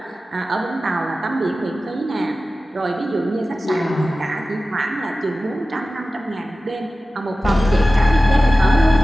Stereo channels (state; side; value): normal; both; correlation 0.95